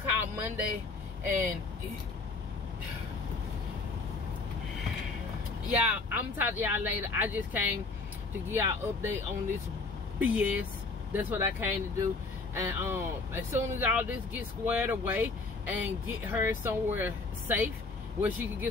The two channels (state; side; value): quieter; right; 3.8 dB